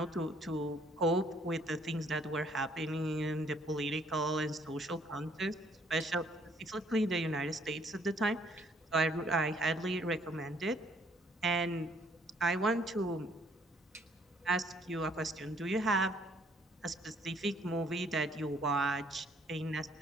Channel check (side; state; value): both; normal; correlation 0.64